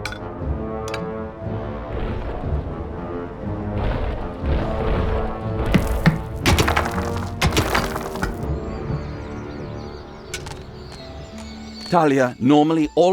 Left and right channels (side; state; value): both; identical; correlation 1.00